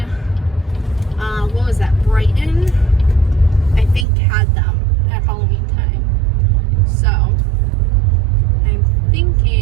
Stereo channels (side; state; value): left; drops out; at 4.0 s